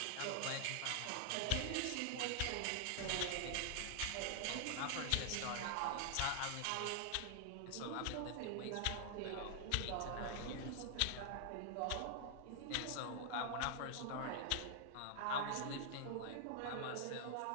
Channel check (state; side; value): different; both; correlation 0.00